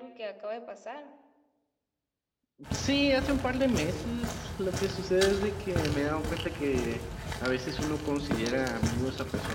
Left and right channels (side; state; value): both; identical; correlation 1.00